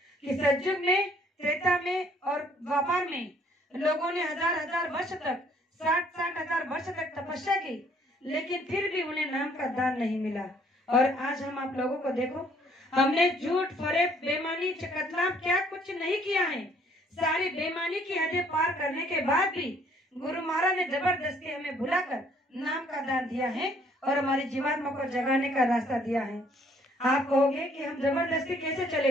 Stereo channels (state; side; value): normal; both; correlation 0.63